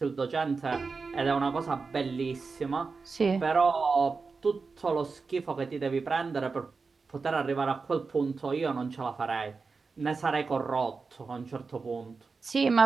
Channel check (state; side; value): quieter; left; 4.5 dB